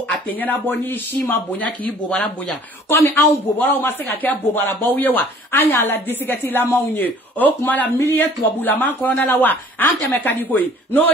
atenya na boni shima bonya ki bobara bonya comme an bobara o maseka ke bobara bawewa anya la disigati la maunye o kuma la millier to bula man ko na la wa ante me kadiko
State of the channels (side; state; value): both; normal; correlation 0.53